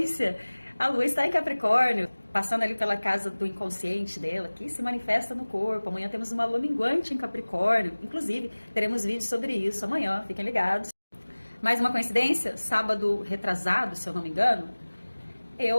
a lua está em Capricórnio, passando ali pela casa do inconsciente dela, que se manifesta no corpo. Amanhã temos uma lua minguante em Capricórnio, inclusive teremos vídeos sobre isso amanhã, fiquem ligados. Mais uma coincidência, sábado retrasado, se eu não me engano,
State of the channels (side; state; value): both; inverted; correlation -1.00